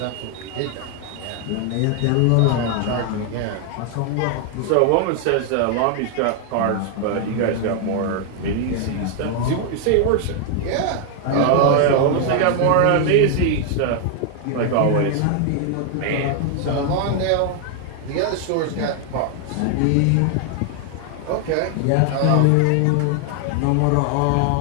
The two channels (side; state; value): both; different; correlation 0.00